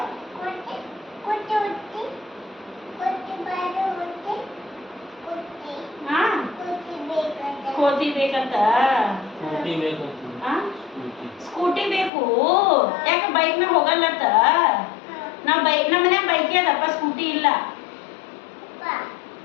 ಕೋತಿ ಬೇಕಂತ ಸ್ಕೂಟಿ ಬೇಕು ಯಾಕೆ ಬೈಕ್ ಮ್ಯಾಗ ಹೋಗಲ್ಲತ್ತ ನಮ್ಮ ಮನ್ಯಾಗ ಬೈಕ್ ಅದಪ್ಪ ಸ್ಕೂಟಿ ಇಲ್ಲ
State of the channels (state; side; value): drops out; right; at 12.1 s